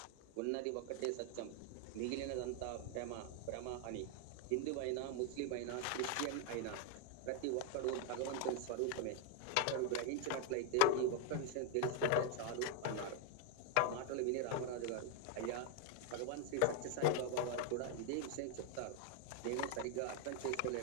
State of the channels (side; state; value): both; different; correlation 0.01